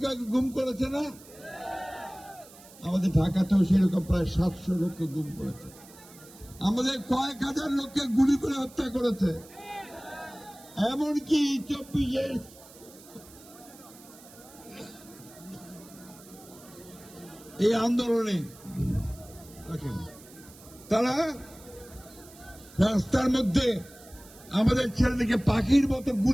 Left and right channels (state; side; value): noise; right; hiss, 21 dB below the sound